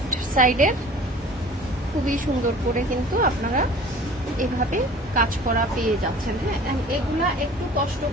সাইডের, খুবই সুন্দর করে কিন্তু আপনারা এভাবে কাজ করা পেয়ে যাচ্ছেন। হ্যাঁ, এগুলা একটু কষ্ট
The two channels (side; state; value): both; normal; correlation 0.45